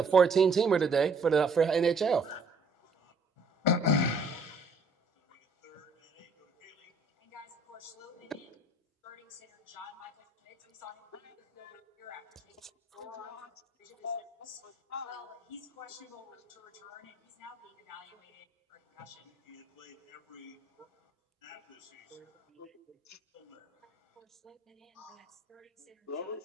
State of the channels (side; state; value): left; quieter; 3.3 dB